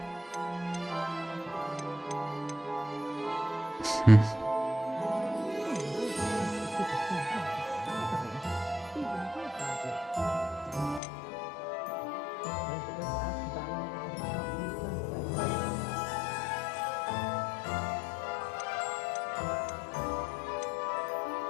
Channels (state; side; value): drops out; right; at 11.0 s